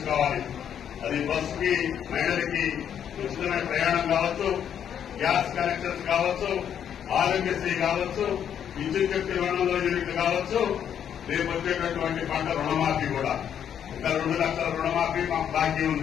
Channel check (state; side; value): quieter; right; 9.0 dB